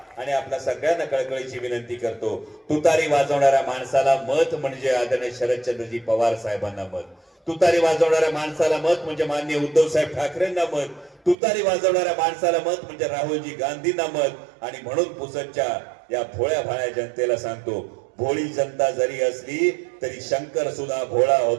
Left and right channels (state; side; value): drops out; left; at 11.4 s